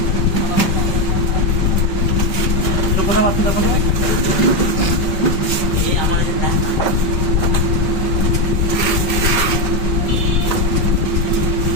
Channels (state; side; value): late; right; 5.2 ms